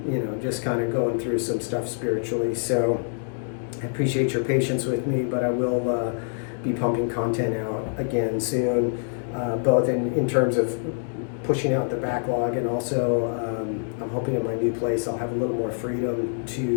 you know, just kind of going through some stuff spiritually. So I appreciate your patience with me, but I will be pumping content out again soon, both in terms of pushing out the backlog and also I'm hoping in my new place I'll have a little more freedom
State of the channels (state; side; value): silent; right; 61 dB below the other